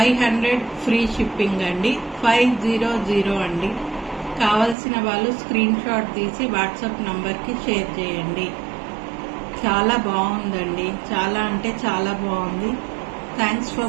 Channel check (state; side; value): drops out; left; at 4.8 s